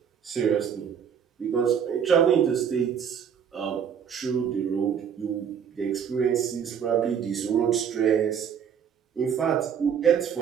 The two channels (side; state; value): left; quieter; 7.9 dB